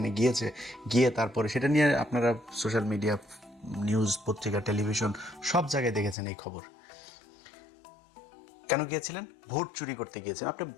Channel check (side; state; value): right; drops out; at 6.2 s